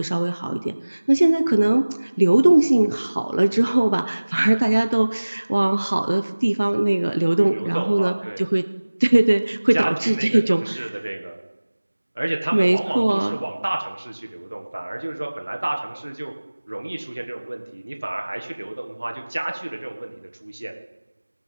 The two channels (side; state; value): both; inverted; correlation -1.00